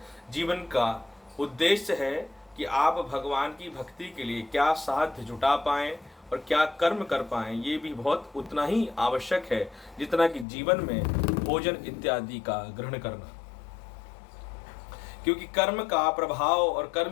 जीवन का उद्देश्य है कि आप भगवान की भक्ति के लिए क्या साध्य जुटा पाएं और क्या कर्म कर पाएं। ये भी बहुत उतना ही आवश्यक है जितना कि जीवन में भोजन इत्यादि का ग्रहण करना, क्योंकि कर्म का प्रभाव और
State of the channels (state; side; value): drops out; right; at 10.5 s